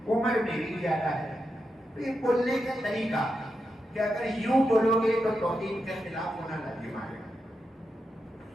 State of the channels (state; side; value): normal; both; correlation 0.87